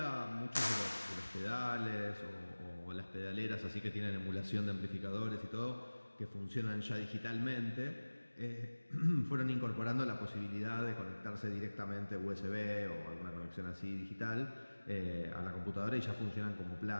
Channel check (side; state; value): both; inverted; correlation -1.00